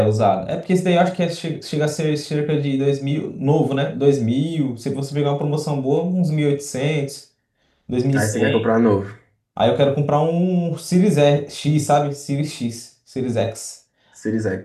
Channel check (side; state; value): both; identical; correlation 1.00